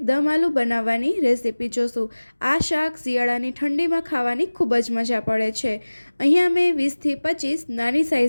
દમ આલુ બનાવવાની રેસીપી જોશું। આ શાક શિયાળાની ઠંડીમાં ખાવાની ખૂબ જ મજા પડે છે। અહીંયા મેં 20થી 25 નાની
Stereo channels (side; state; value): both; inverted; correlation -1.00